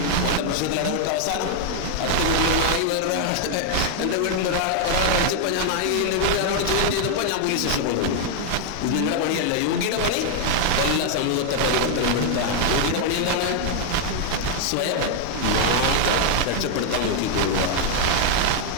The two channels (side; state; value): both; different; correlation 0.00